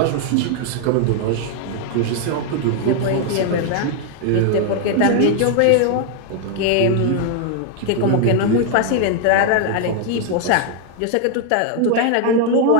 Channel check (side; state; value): both; different; correlation 0.00